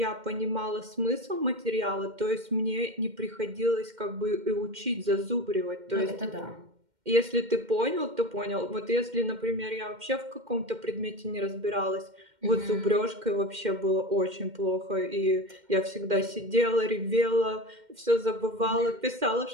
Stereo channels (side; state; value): left; late; 2.1 ms